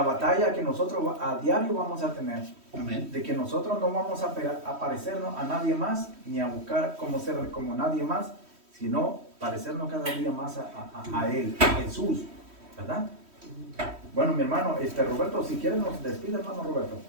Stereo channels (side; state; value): left; late; 3.1 ms